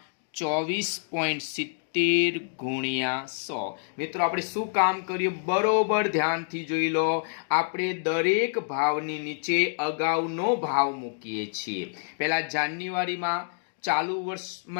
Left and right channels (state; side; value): silent; right; digital silence